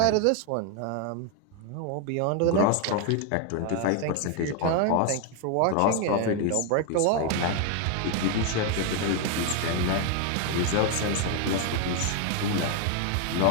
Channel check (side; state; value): both; different; correlation 0.01